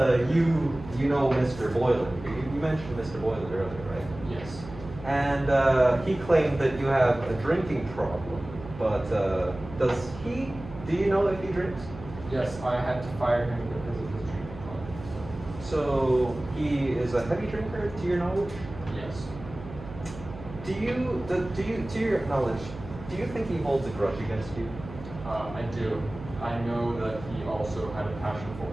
you know Mr. Boylan. You mentioned Mr. Boylan earlier, right? Yes. And he claimed that you have a drinking problem, but do you know if he drinks? Yes, I had to fire him because of his drinking problem. So he is a heavy drinker, to your knowledge? Yes. To your knowledge, do you think he holds a grudge against you? I do. I know that he also had a passion for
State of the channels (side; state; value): right; noise; hum, 14 dB below the sound